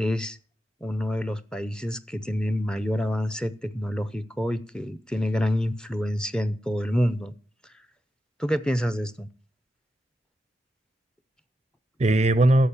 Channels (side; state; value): both; normal; correlation 0.88